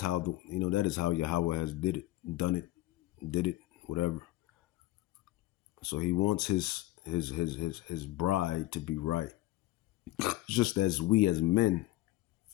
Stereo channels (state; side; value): quieter; right; 17.1 dB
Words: Yahweh has did it, whatever. So he wants his bride to be right. Just as we as men,